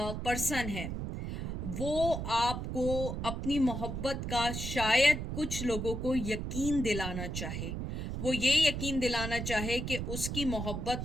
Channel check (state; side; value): noise; right; rumble, 4 dB below the sound